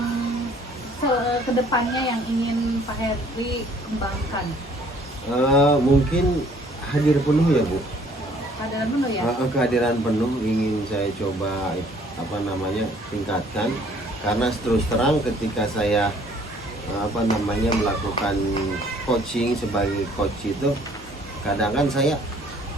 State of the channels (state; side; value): normal; both; correlation 0.58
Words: kedepannya yang ingin Pak Heri kembangkan? Mungkin hadir penuh ya Bu. Kehadiran penuh ya? Kehadiran penuh ingin saya coba tingkatkan, karena terus terang ketika saya melakukan coaching sebagai coach itu kadang kan saya